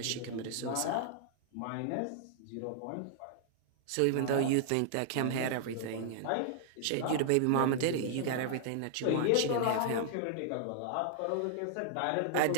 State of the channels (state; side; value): different; both; correlation -0.01